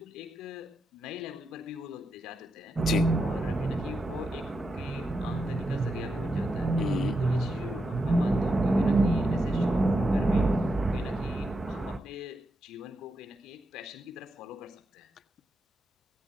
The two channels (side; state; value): both; normal; correlation 0.86